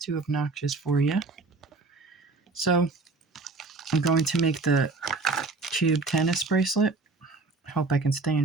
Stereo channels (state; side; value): quieter; left; 3.7 dB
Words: obnoxious for you. So I'm going to make the cube tennis bracelet. I hope I can stay